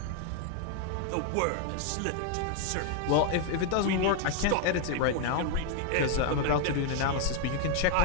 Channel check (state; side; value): different; both; correlation 0.01